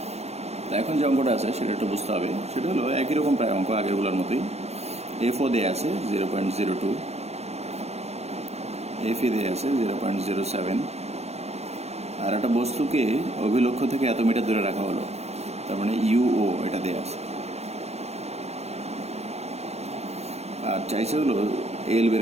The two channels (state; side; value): late; left; 0.31 ms